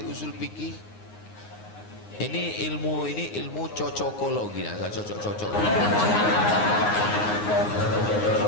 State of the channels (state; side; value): late; right; 9.6 ms